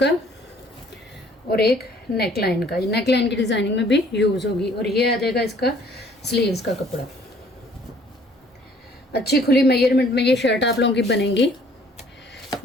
और एक नेक लाइन का। ये नेक लाइन की डिज़ाइनिंग में भी यूज़ होगी। और ये आ जाएगा इसका स्लीव्स का कपड़ा। अच्छी खुली मेजरमेंट में ये शर्ट आप लोगों की बनेगी।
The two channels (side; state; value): both; normal; correlation 0.58